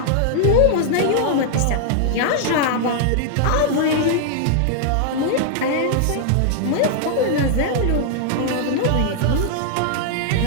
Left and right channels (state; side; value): different; both; correlation -0.01